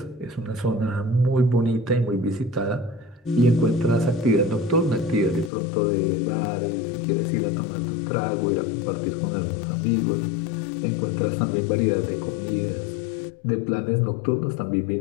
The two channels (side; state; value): right; drops out; at 5.5 s